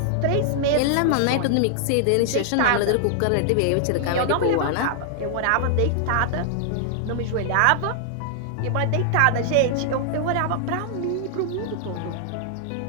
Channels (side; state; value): both; different; correlation -0.01